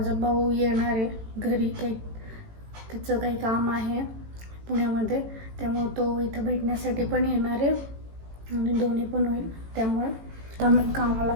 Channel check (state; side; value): late; left; 18 ms